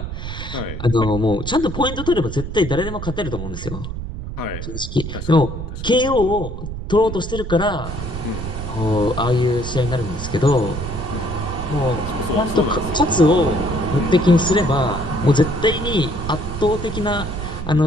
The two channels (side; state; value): right; noise; rumble, 7 dB below the sound